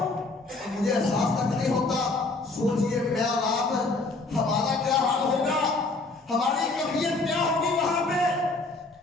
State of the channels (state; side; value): quieter; right; 3.4 dB